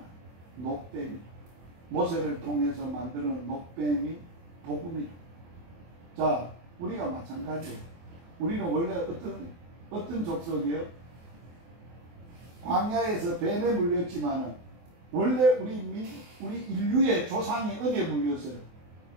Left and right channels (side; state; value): left; late; 24 ms